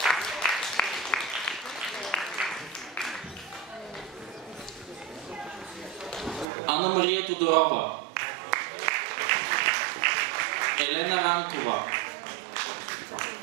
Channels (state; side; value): drops out; left; at 6.5 s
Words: Анна Мария Тодорова, Елена Ранкова,